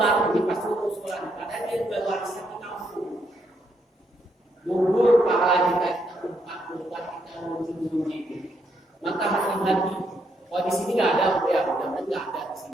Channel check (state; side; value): normal; both; correlation 0.76